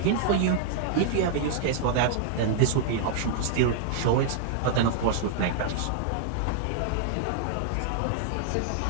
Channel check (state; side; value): different; both; correlation -0.01